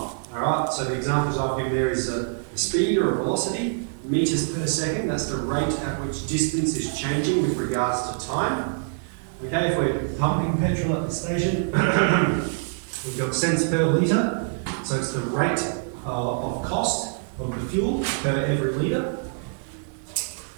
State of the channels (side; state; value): left; silent; 59 dB below the other